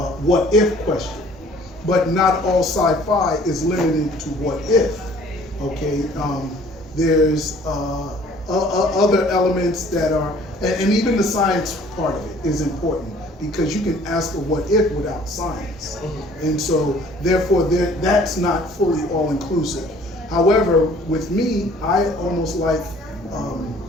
what if question. But not all sci-fi is limited to what if. Okay, there's other elements that are, and even the science part of it is important, because you can ask a what if without science, and so therefore that's not fully all inclusive. However, with me, I almost like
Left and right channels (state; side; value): normal; both; correlation 0.54